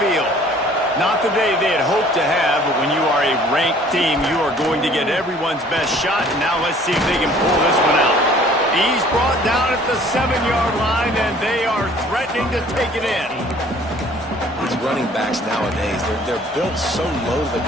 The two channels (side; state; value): both; normal; correlation 0.54